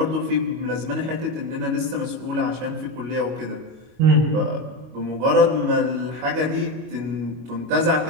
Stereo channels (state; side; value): late; left; 25 ms